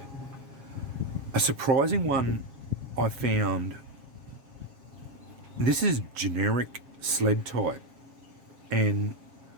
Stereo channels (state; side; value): late; left; 7.4 ms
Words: A surprising one I found, this is generic sled type and